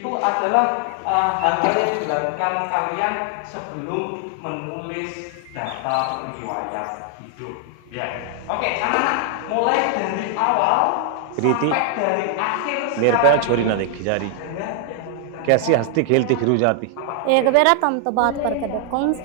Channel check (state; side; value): different; both; correlation 0.00